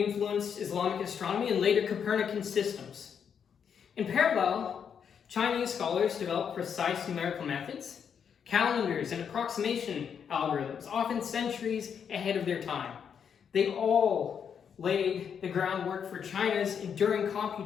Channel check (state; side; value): quieter; right; 7.4 dB